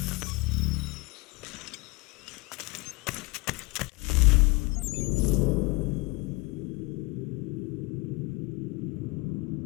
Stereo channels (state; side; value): quieter; right; 24.1 dB